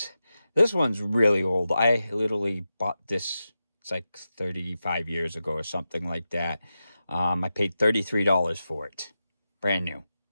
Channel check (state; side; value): inverted; both; correlation -0.91